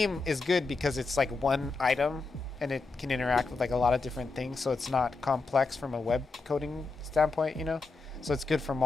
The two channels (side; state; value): right; quieter; 4.0 dB